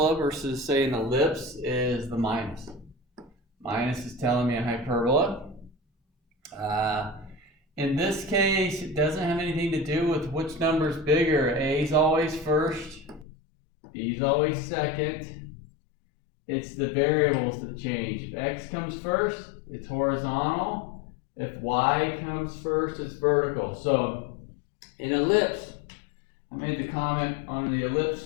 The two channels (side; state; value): right; drops out; at 13.2 s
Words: versus, say, an ellipse is the minus. Minus is telling me a hyperbola. In this case, it doesn't have anything to do with which number is bigger. A is always first. B is always second. It's the variables that change. If x comes first, it's horizontal. If y comes first, it's vertical. So in ellipse, I made the comment on the ellipse